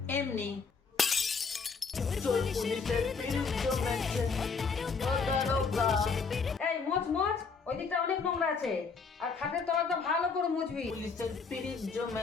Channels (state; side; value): quieter; right; 5.1 dB